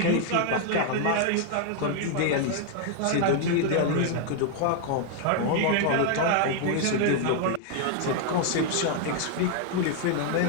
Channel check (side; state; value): both; different; correlation 0.00